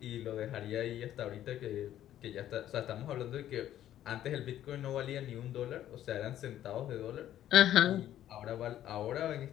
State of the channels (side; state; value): right; quieter; 12.0 dB